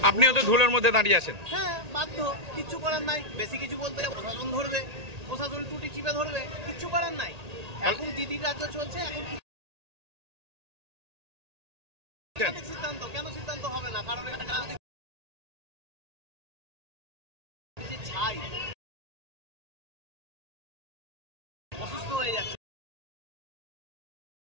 আপনিও তো ধুলোর মধ্যে দাঁড়িয়ে আছেন। হ্যাঁ, বাধ্য, কিচ্ছু করার নাই। বেশি কিছু বলতে প্রশাসন ধরবে, প্রশাসন টুটি চিপে ধরবে, কিচ্ছু করার নাই। এখন দিদির রাজ্য চলছে, এখন সিদ্ধান্ত কেন সিদ্ধান্ত হবে না? কারণ ছাই অসুস্থ হয়ে যাচ্ছে।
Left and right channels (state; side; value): late; left; 1.8 ms